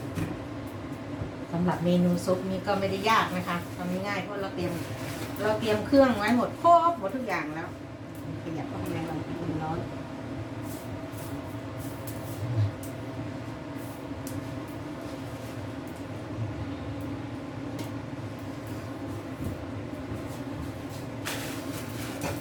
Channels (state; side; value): identical; both; correlation 1.00